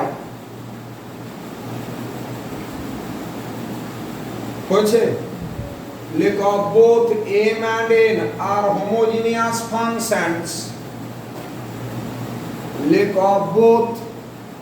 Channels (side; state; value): both; identical; correlation 1.00